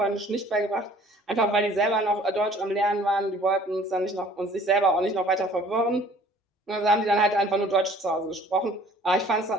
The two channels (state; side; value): normal; both; correlation 0.53